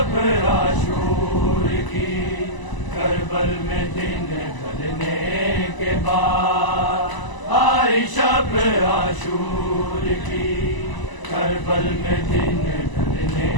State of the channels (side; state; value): right; late; 1.0 ms